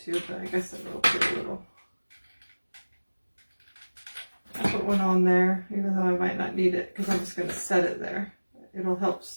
to, but I guess I will put a little. I'll put one on there, even though I might not need it, because I'm just going to set it there. It'll help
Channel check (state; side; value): inverted; both; correlation -1.00